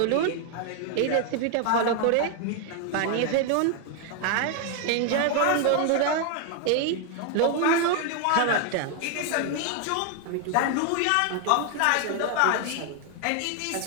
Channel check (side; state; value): both; different; correlation 0.00